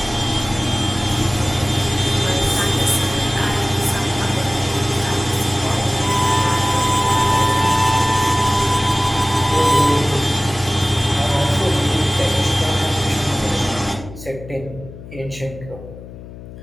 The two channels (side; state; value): left; noise; hum, 15 dB below the sound